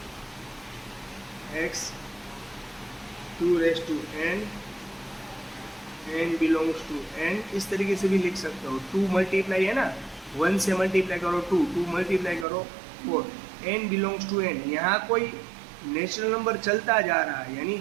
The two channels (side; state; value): left; drops out; at 12.5 s